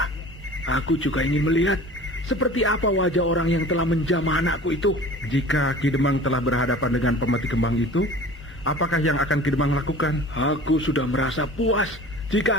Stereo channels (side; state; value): both; normal; correlation 0.42